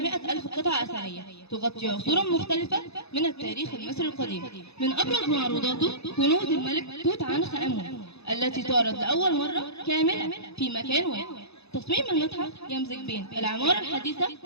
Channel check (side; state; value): right; late; 0.79 ms